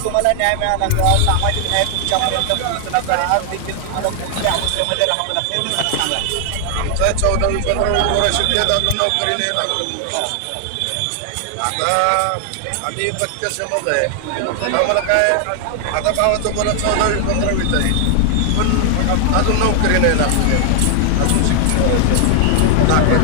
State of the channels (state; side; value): different; both; correlation 0.00